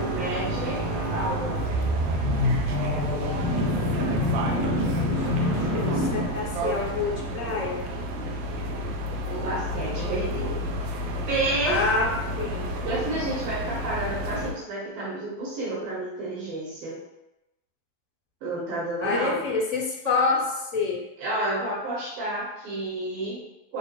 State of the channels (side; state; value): left; late; 12 ms